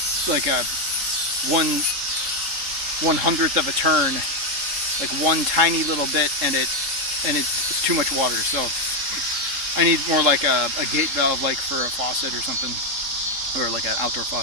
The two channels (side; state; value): left; late; 3.7 ms